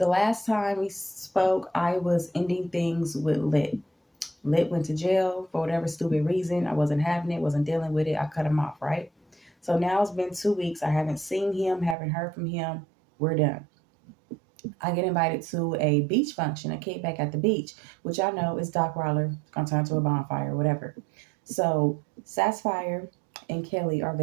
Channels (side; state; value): left; drops out; at 12.0 s